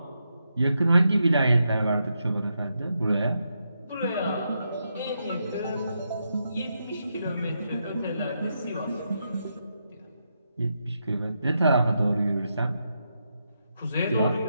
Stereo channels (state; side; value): inverted; both; correlation -0.83